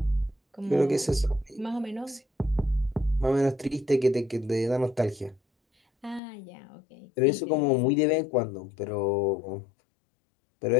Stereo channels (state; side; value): drops out; right; at 6.2 s